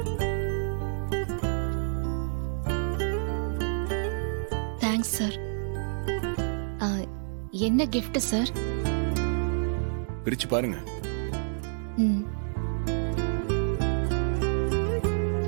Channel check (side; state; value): left; silent; 59 dB below the other